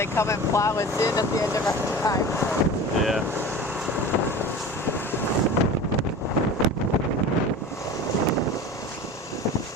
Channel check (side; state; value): both; normal; correlation 0.35